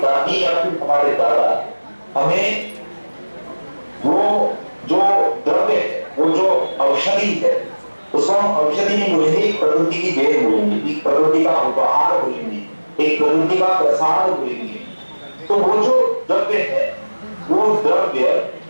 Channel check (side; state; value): both; inverted; correlation -1.00